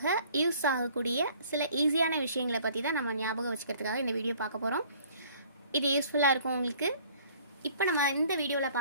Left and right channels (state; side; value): inverted; both; correlation -0.55